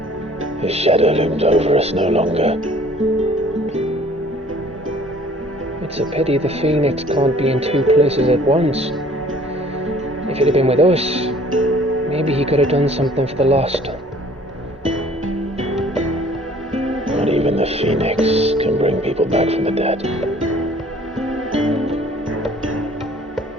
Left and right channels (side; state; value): both; normal; correlation 0.54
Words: His shadow looms over us no longer. It's a pity the Phoenix can't be in two places at once. If he'd have been with us, maybe he could have done something for the lost. Not even the Phoenix can bring people back from the dead.